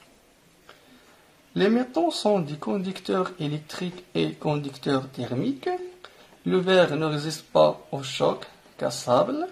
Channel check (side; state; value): both; identical; correlation 1.00